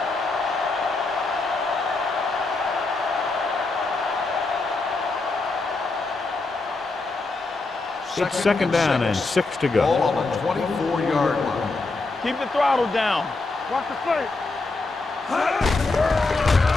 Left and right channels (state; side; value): quieter; right; 3.5 dB